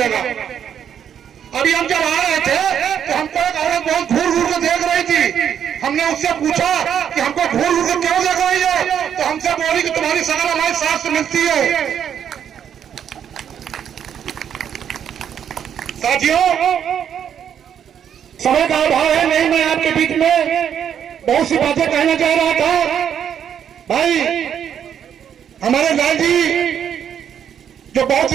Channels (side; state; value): left; quieter; 8.8 dB